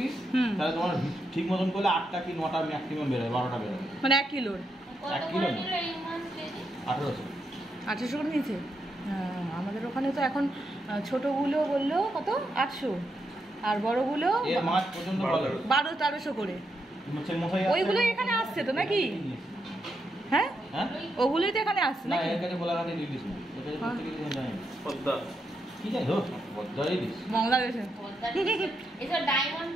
হুম। তাহলে তোমার ঠিক মতন করলে 8টা কি 9টা ম্যাক্সিমাম বেরোয়, 12টা বেরোয়। মানে 1 কিলোর কত 1 করে কিলো না। নিল এই মাছ কেজি? 1800। 800 করে নিয়েছে। হ্যাঁ, আমাদের ওখানে তো এখন ছোটগুলো বললো কত 800, আর বড়গুলো এর মাছ পর্যন্ত ভালো। 1200-1300 করে। মাছের মশাই ওইগুলো এখানে আসছে তো নাকি? হ্যাঁ হ্যাঁ ওগুলোই তো এখানে আসছে না, নাকি? এর কাছে গোলাঘাটে ইলিশ না, এর কাছে হ্যাঁ। প্রত্যেক ইলিশ জানি পদ্মা, কি জানি হোক পদ্মা ইলিশ। বাংলাদেশে এসব ডায়মন্ড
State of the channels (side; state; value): both; normal; correlation 0.82